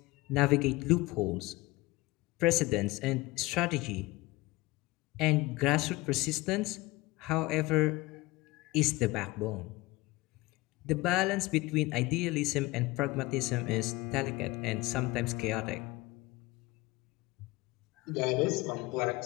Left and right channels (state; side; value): quieter; right; 20.8 dB